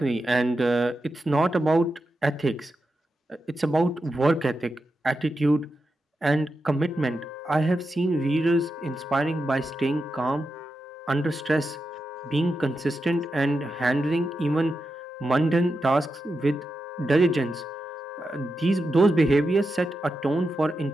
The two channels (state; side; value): normal; both; correlation 0.88